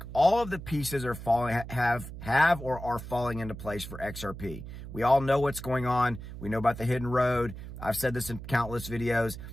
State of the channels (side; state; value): right; noise; hum, 11 dB below the sound